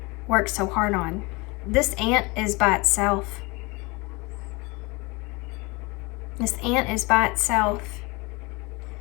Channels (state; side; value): quieter; right; 26.1 dB